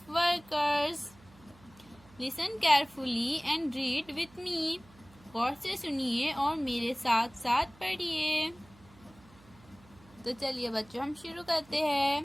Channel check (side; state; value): right; noise; hum, 25 dB below the sound